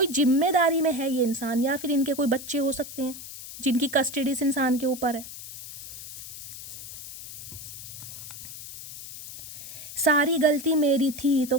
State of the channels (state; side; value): noise; left; hiss, 12 dB below the sound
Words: जिम्मेदारी में है ये इंसान, या फिर इनके कोई बच्चे हो सकते हैं जिनकी कस्टडी इस इंसान के ऊपर है। सारी गलती मेरी थी। तो